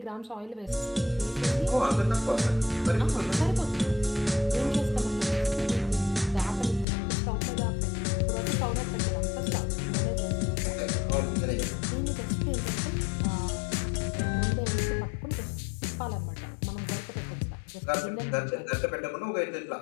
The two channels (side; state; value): right; drops out; at 6.9 s